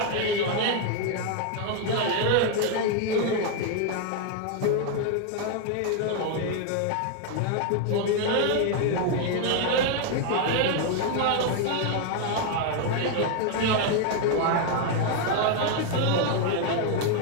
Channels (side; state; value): both; different; correlation 0.00